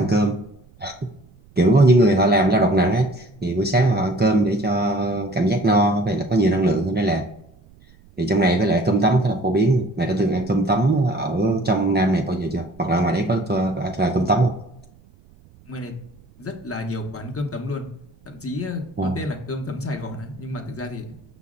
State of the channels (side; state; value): right; noise; rumble, 27 dB below the sound